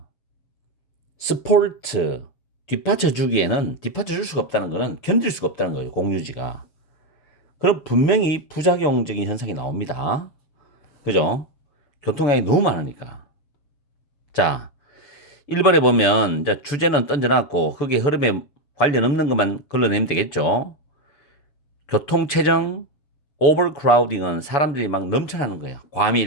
스포트 뒷받쳐 줄 수가 없다는 거는 견딜 수가 없다는 거예요. 공유지가. 그럼 분명히 부작용적인 현상이 나옵니다. 그죠? 교통량이 너무 많으니까. 자, 1번에 보면 이제 주제는 던져놨고 거기에 흐름에 관련 없는 것만 걸러내면 되겠죠. 교통체증, overcrowding은 사람들이 막 넘쳐나는 거예요.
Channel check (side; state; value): right; late; 6.9 ms